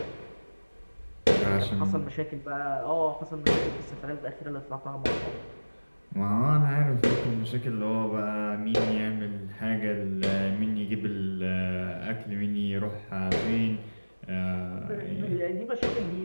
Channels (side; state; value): both; inverted; correlation -1.00